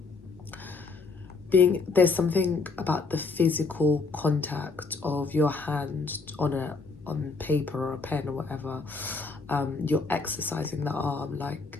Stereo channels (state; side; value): quieter; right; 4.2 dB